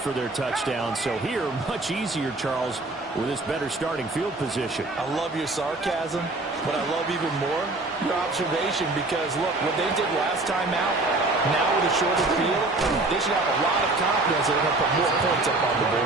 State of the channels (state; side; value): quieter; left; 3.0 dB